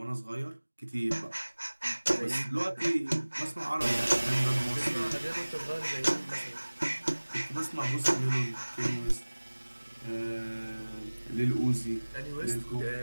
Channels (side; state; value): both; inverted; correlation -1.00